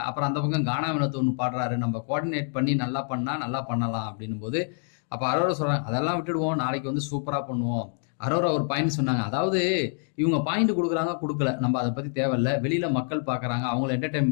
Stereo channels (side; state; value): right; silent; 56 dB below the other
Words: அப்புறம் அந்த பக்கம் கானா வினோத் ஒன்று பாடுறாரு, நம்ம கோஆர்டினேட் பண்ணி நல்லா பண்ணா நல்லா பண்ணலாம் அப்படின்னும் போது, அப்ப அரோரா சொல்றாங்க, அதெல்லாம் விட்டுடுவோம், நாளைக்கு வந்து சூப்பரா பண்ணுவோம். அரோரா ஒரு பாயிண்ட் சொன்னாங்க, அதாவது இவங்க பாயிண்ட் கொடுக்குறாங்க கொடுக்கல, நம்ம அதை பத்தி தேவையில்ல. வெளியில மக்கள் பாக்குறாங்க, அவங்களை